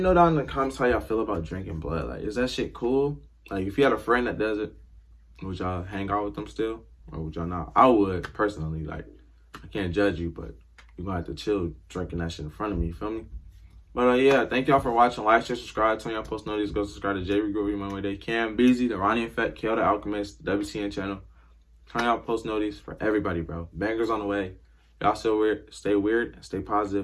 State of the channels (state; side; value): identical; both; correlation 1.00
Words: know down in the comments how y'all feel about drinking blood. Like, is that shit cool? Like, if you had a friend that does it, would y'all hang out with them still? Or would y'all not? I would, personally. Like, I can't judge you, but you're gonna have to chill drinking that shit in front of me, you feel me? But yeah, thank y'all for watching. Like, share, subscribe. Turn y'all post notifications. Go subscribe to J. Regrow, My Way Day, Cam, Beezy, the Ronnie Effect, Kale the Alchemist, the WCN channel. Turn y'all post notifications for everybody, bro. Bangers on the way. Y'all still weird. Stay weird. Stay